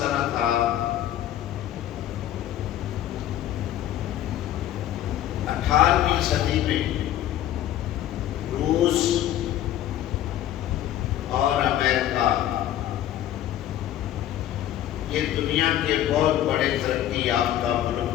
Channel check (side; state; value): right; quieter; 12.2 dB